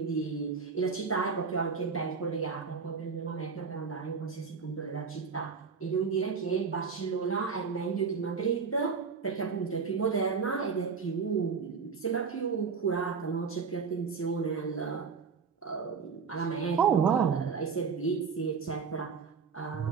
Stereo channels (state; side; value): quieter; left; 5.6 dB